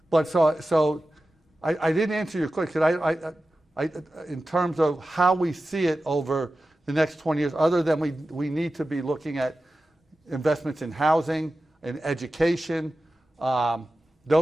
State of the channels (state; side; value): normal; both; correlation 0.94